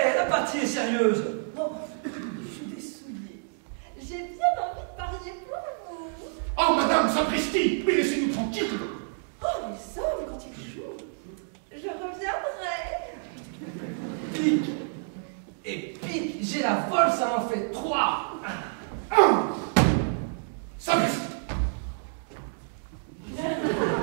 mariée pour vous. Oh, Madame Sapristi, mais laissez-nous tranquilles. Oh, nous sommes quand il joue. Je reviendrai. Pique et pique, j'ai la folle, ça m'en fait 3. Sapristi.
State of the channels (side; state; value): left; silent; digital silence